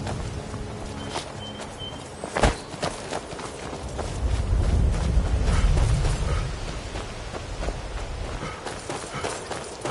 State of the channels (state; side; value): identical; both; correlation 1.00